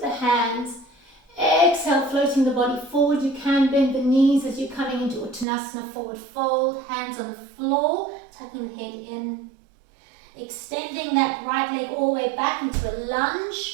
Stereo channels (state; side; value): drops out; left; at 5.5 s